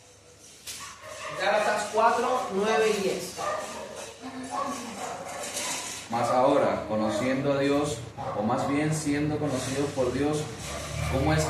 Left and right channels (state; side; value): identical; both; correlation 1.00